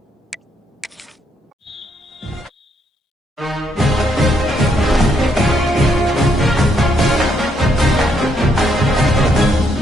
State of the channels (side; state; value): both; normal; correlation 0.74